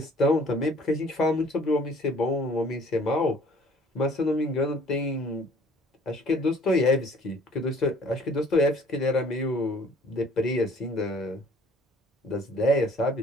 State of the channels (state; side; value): normal; both; correlation 0.55